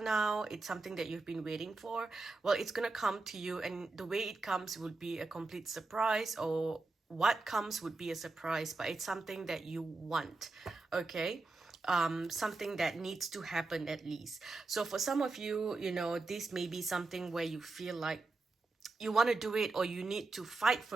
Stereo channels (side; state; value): left; quieter; 3.5 dB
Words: it's something that you've been waiting for. Well, it's gonna come to you, and the way it comes would be a complete surprise, or what comes would be a surprise, but it's something that you want, okay. Something that needs to happen at least. So for some of you, you know, this may be something where you feel like you want to do it, or you need to fight